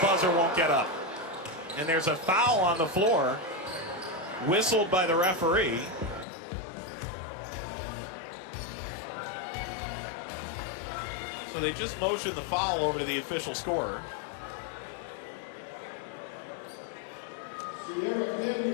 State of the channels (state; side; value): drops out; right; at 6.2 s